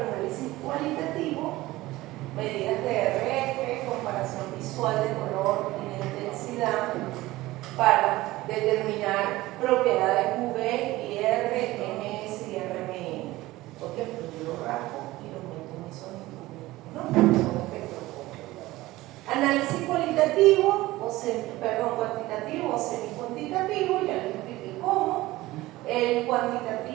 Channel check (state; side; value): quieter; left; 18.2 dB